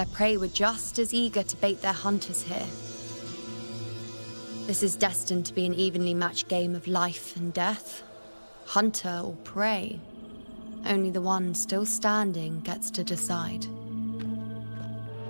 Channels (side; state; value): both; inverted; correlation -1.00